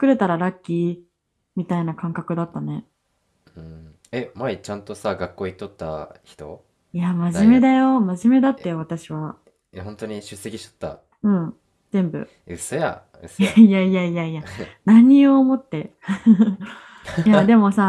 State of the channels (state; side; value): identical; both; correlation 1.00